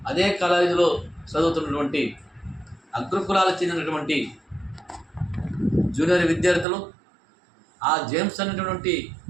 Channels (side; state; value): left; drops out; at 6.7 s